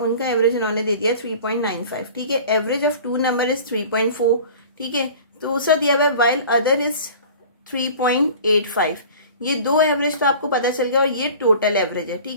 एवरेज इन्होंने दे दिया 3.95. ठीक है, एवरेज ऑफ 2 नंबर इज 3.4. ठीक है, तो दूसरा दिया हुआ है व्हाइल अदर इज 3.85. ये दो एवरेज तो आपको पता चल गया और ये टोटल एवरेज है.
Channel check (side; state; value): both; inverted; correlation -0.42